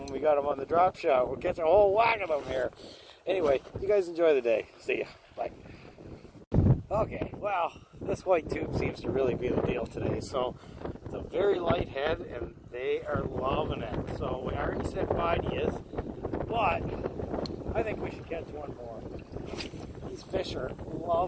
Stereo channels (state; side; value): identical; both; correlation 1.00